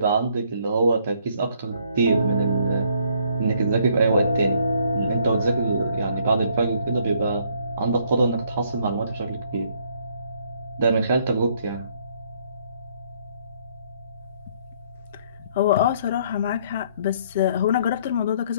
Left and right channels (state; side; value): inverted; both; correlation -0.66